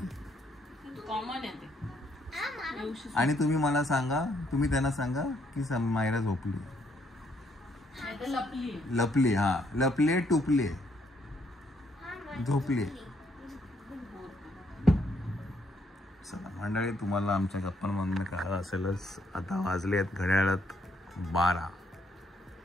आणि तुम्ही मला सांगा, तुम्ही त्यांना सांगा की मायरा झोपली. लपली. हा लपले टुपले झोपले. चला मंडळी तुम्हाला आमच्या गप्पांमधून कळलं असेलच. आता वाजले आहेत घड्याळात 12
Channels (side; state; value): both; normal; correlation 0.71